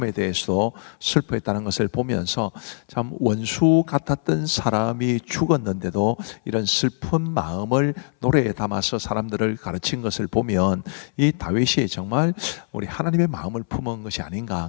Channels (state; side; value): silent; right; 63 dB below the other